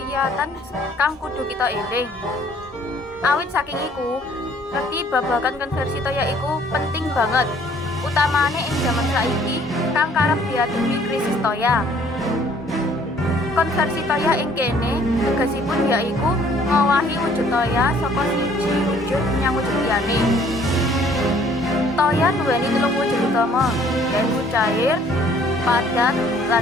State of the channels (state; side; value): normal; both; correlation 0.59